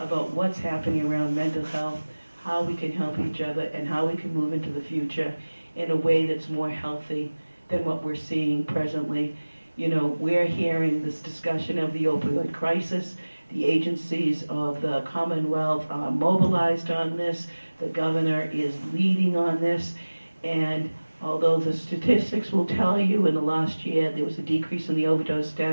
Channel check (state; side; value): inverted; both; correlation -1.00